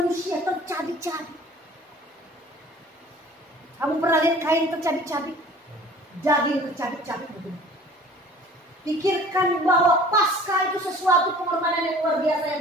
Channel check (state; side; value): normal; both; correlation 0.47